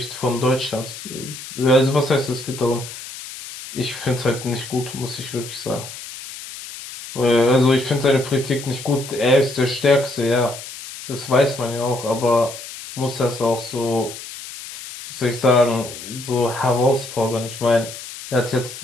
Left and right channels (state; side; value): noise; left; hiss, 12 dB below the sound